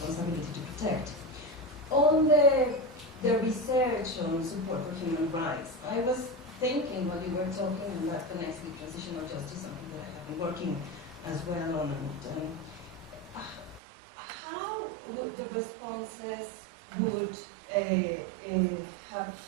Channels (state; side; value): drops out; left; at 13.8 s